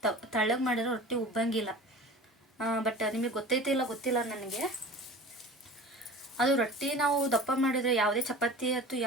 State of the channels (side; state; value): both; normal; correlation 0.39